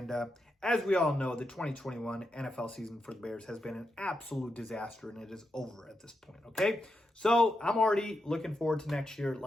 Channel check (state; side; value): normal; both; correlation 0.86